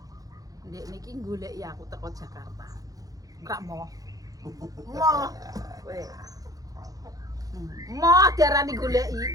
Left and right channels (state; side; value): late; left; 0.17 ms